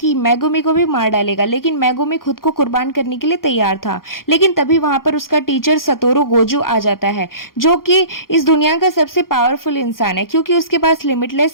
मेगुमी को भी मार डालेगा। लेकिन मेगुमी खुद को कुर्बान करने के लिए तैयार था। लेकिन तभी वहां पर उसका टीचर सतोरू गोजू आ जाता है, जो कि इस दुनिया का सबसे पावरफुल इंसान है क्योंकि उसके पास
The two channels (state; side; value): late; right; 0.92 ms